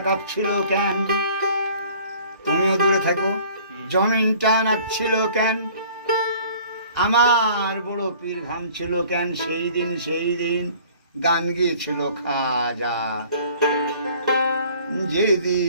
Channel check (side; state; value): both; inverted; correlation -0.52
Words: কাঁপছিল কেন, তুমিও দূরে থাকো, জমিনটা নাচছিল কেন, আমার বড় পীর ঘামছিল কেন, সেই দিন গান গিয়েছিল খাজা